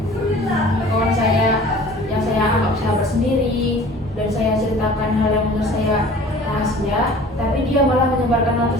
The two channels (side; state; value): both; normal; correlation 0.46